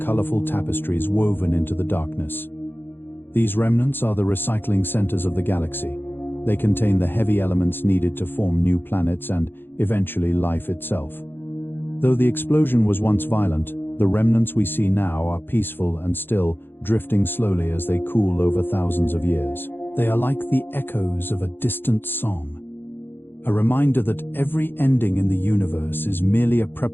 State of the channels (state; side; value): late; right; 0.10 ms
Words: tapestries woven into the darkness. These remnants are the recycling centers of the galaxy. They contain the heavy elements needed to form new planets and, eventually, life itself. Though the explosion was once violent, The remnants we see now are peaceful and still, drifting slowly as they cool over thousands of years. They are like the echoes of a distant song, a reminder that every ending in the universe is merely a